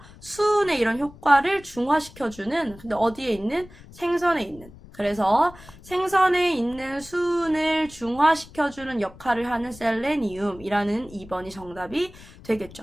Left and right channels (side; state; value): left; noise; rumble, 20 dB below the sound